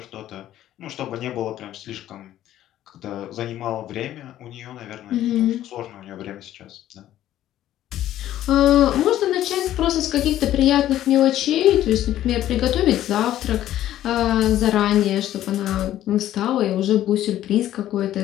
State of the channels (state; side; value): quieter; right; 12.8 dB